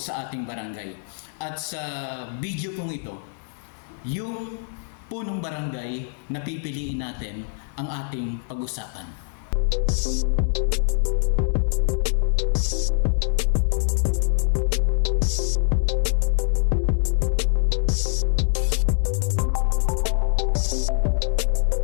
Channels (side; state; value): right; silent; 60 dB below the other